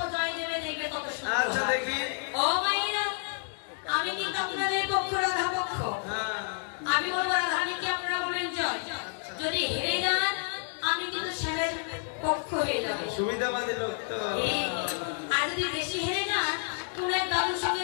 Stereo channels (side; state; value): right; silent; 58 dB below the other